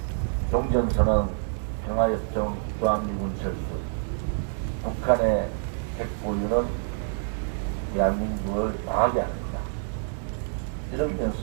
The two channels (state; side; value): silent; left; digital silence